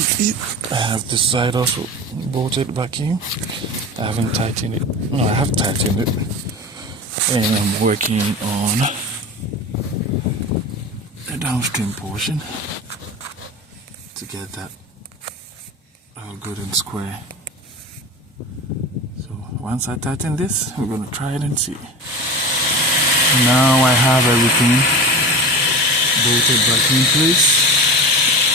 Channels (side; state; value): both; normal; correlation 0.30